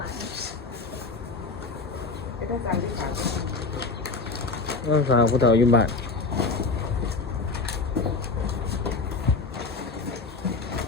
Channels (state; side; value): quieter; right; 4.0 dB